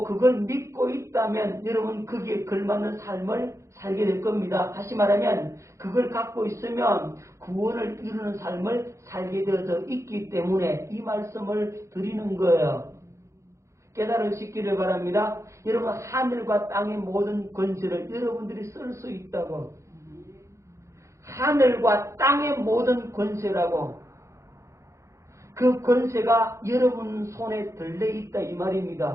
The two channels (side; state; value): left; late; 0.14 ms